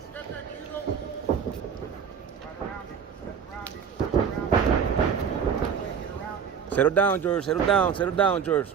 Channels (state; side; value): quieter; left; 7.2 dB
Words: Settle down, George. Settle down. Settle down, George.